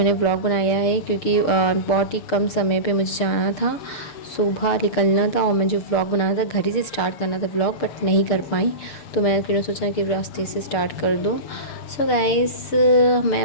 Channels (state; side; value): late; right; 6.6 ms